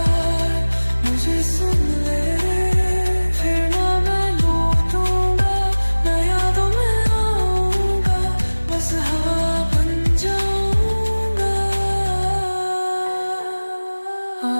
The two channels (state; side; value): inverted; both; correlation -1.00